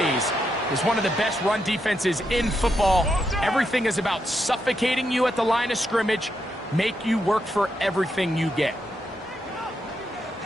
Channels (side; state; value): both; normal; correlation 0.82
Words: It's one of the best run defenses in football. Everything is about suffocating you at the line of scrimmage, make you work for everything you get.